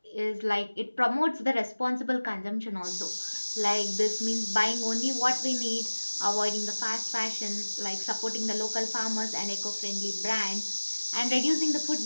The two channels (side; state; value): both; inverted; correlation -1.00